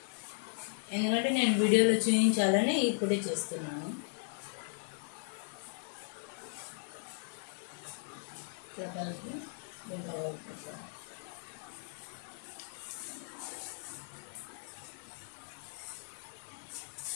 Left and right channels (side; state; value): right; silent; 53 dB below the other